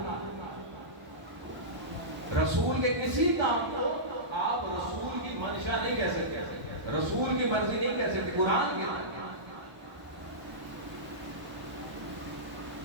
رسول کے کسی کام کو آپ رسول کی منشا نہیں کہہ سکتے، رسول کی مرضی نہیں کہہ سکتے۔ قرآن کہتا ہے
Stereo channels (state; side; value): late; left; 1.0 ms